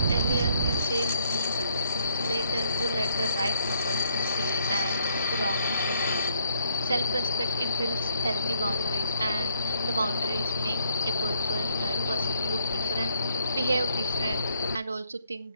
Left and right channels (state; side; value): inverted; both; correlation -0.67